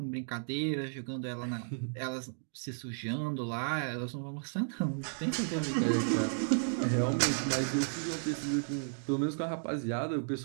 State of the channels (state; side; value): silent; left; 55 dB below the other